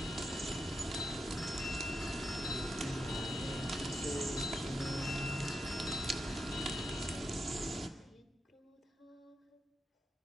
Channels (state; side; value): normal; both; correlation 0.86